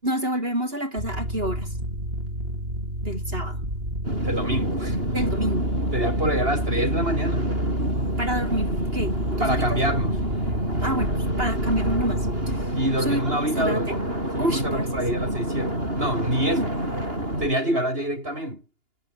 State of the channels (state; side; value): late; left; 2.8 ms